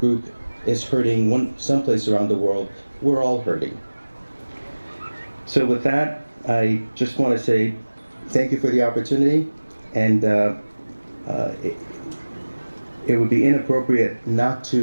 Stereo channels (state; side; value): inverted; both; correlation -1.00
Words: is hurting someplace around the world, we're all hurting. So with that, I just want to say thank you for the opportunity, and it would be inappropriate not